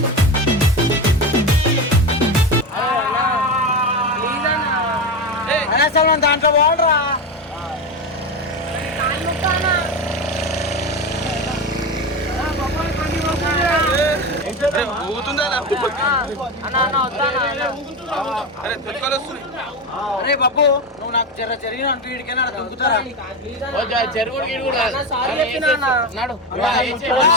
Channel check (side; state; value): both; normal; correlation 0.18